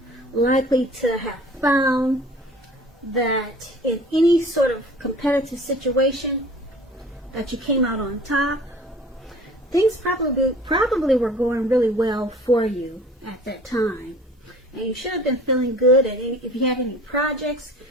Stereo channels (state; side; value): normal; both; correlation 0.47